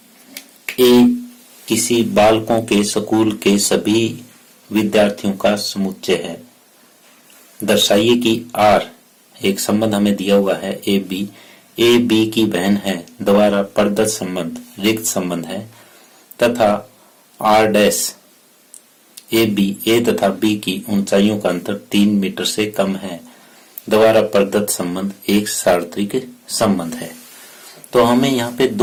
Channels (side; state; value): both; identical; correlation 1.00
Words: ए किसी बालकों के स्कूल के सभी विद्यार्थियों का समुच्चय है। दर्शाइए कि आर एक संबंध हमें दिया हुआ है ए बी की बहन है, द्वारा प्रदत्त संबंध रिक्त संबंध है, तथा आर डैश ए तथा बी की ऊंचाइयों का अंतर 3 मीटर से कम है, द्वारा प्रदत्त संबंध एक सार्वत्रिक संबंध है। तो हमें यहाँ पे